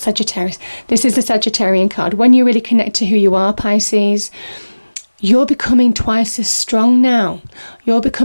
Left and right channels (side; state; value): both; inverted; correlation -1.00